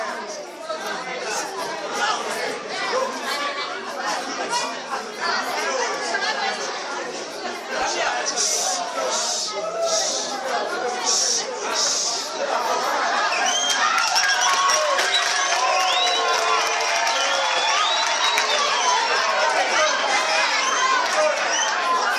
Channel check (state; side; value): identical; both; correlation 1.00